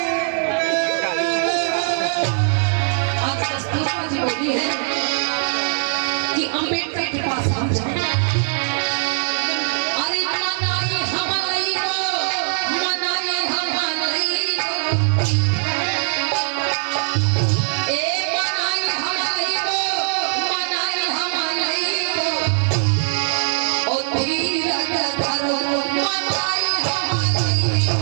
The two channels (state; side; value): silent; left; 65 dB below the other